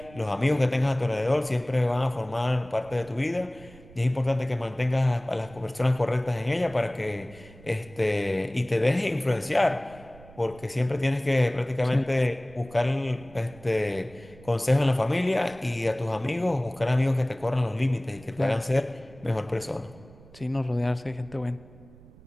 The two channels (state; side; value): noise; right; rumble, 22 dB below the sound